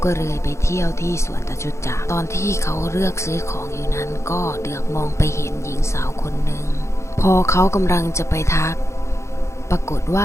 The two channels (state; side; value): late; right; 0.14 ms